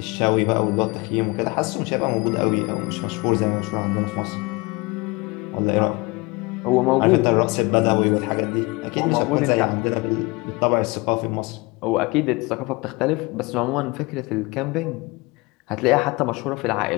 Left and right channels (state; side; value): quieter; right; 25.4 dB